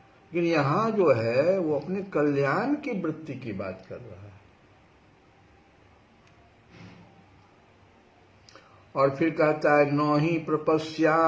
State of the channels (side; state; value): both; identical; correlation 1.00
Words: लेकिन यहां जो है वो अपने कल्याण की वृत्ति की बात कर रहा है। और फिर कहता है न ही